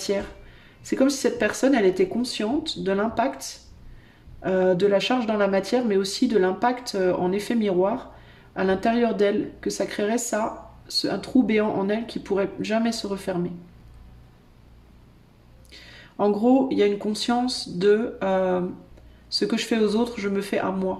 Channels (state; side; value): identical; both; correlation 1.00